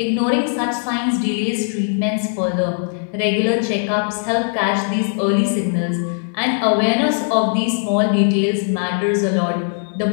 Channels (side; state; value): right; silent; 66 dB below the other